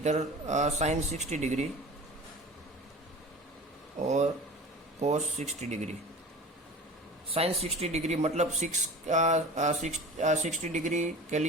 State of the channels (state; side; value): normal; both; correlation 0.37